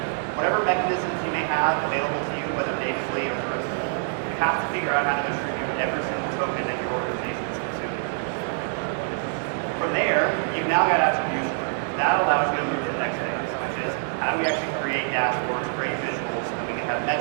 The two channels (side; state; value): left; silent; digital silence